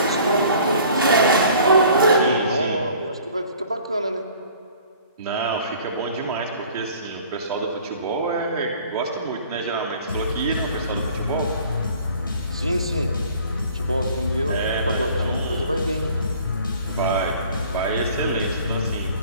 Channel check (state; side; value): inverted; both; correlation -0.51